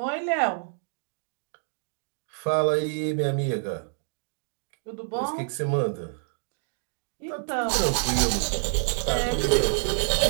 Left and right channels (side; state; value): left; silent; digital silence